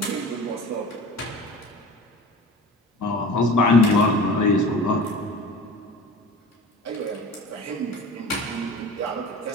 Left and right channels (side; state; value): both; normal; correlation 0.38